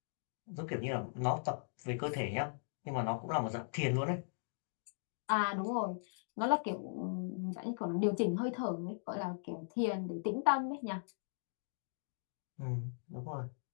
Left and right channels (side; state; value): right; silent; digital silence